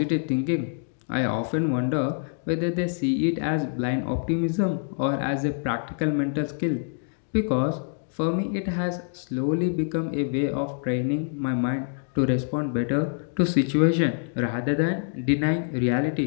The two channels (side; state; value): right; silent; digital silence